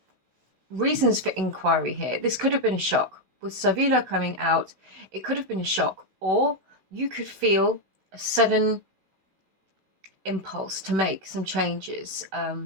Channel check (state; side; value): late; left; 16 ms